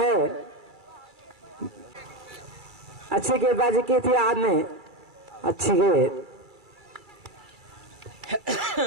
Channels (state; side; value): late; left; 2.3 ms